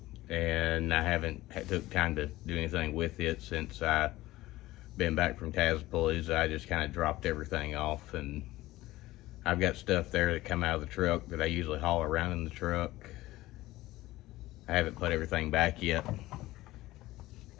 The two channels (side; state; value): right; quieter; 17.3 dB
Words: and I haven't took time to do anything with it since I been back from Tazpalooza, I just kind of dropped everything off, and I've got stuff there that come out of the truck that I usually haul around in the truck. I haven't put everything back yet,